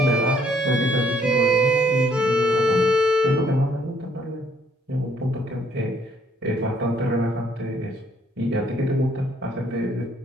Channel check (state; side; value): normal; both; correlation 0.65